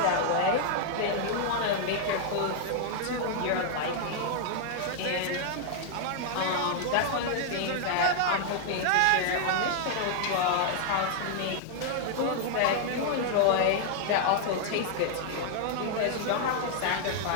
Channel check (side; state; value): both; different; correlation 0.00